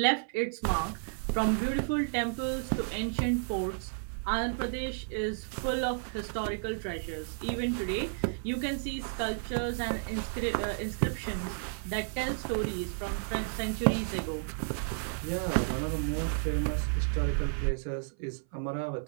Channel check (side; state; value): left; silent; 56 dB below the other